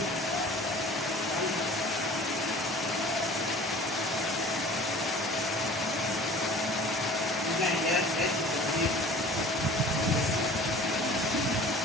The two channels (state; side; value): normal; both; correlation 0.45